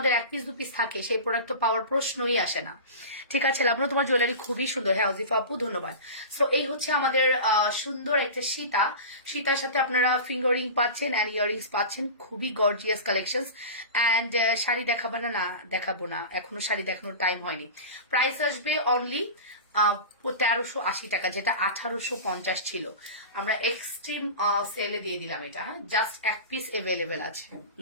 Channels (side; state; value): both; inverted; correlation -0.31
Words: 1 পিস 2 পিস থাকে, সেই প্রোডাক্ট তো পাওয়ার প্রশ্নই আসে না, ঠিক আছে? লাবণ্য, তোমার জুয়েলারি খুবই সুন্দর। হ্যাঁ অজিফা আপু, ধন্যবাদ। সো এই হচ্ছে আমাদের সুন্দর একটা সীতা। সীতার সাথে আপনারা ফিঙ্গারিং পাচ্ছেন অ্যান্ড ইয়ারিংস পাচ্ছেন, খুবই গর্জিয়াস কালেকশন। অ্যান্ড শাড়ি দেখাবো না? না দেখাবো না, এখনো শাড়ি দেখানোর টাইম হয়নি। প্রাইস আসবে অনলি 1380 টাকা, যেটা 1850 ছিল। আমরা এক্সট্রিম সেলে দিয়ে দিলাম এটা। হ্যাঁ, জাস্ট 1 পিস অ্যাভেলেবেল আছে।